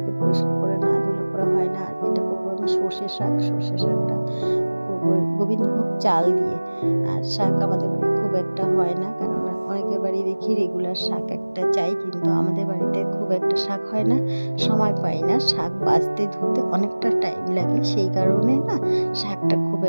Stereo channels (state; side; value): inverted; both; correlation -1.00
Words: পরিষ্কার করে না ধুলে পরে হয় না। আর এটা করবো আমি সর্ষে শাকটা করবো গোবিন্দভোগ চাল দিয়ে। আর শাক আমাদের বাড়ি খুব একটা হয় না, কেননা অনেকের বাড়ি দেখি রেগুলার শাক একটা চাই, কিন্তু আমাদের বাড়িতে খুব একটা শাক হয় না, সময় পাই না। শাক বাছতে ধুতে অনেকটা টাইম লাগে, সেই কারণে না শাকটা খুব